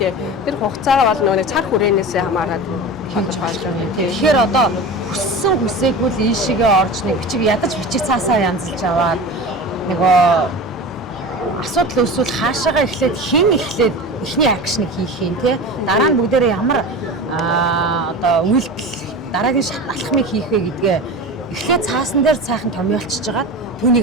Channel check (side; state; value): both; normal; correlation 0.30